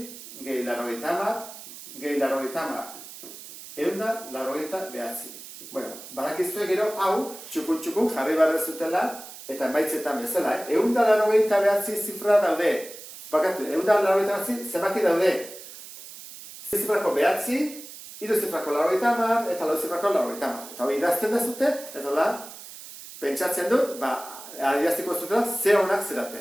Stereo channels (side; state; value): right; noise; hiss, 15 dB below the sound